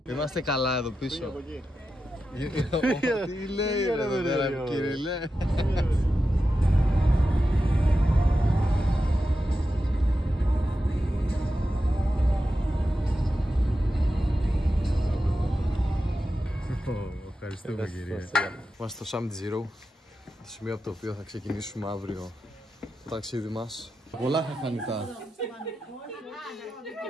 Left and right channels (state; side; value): normal; both; correlation 0.90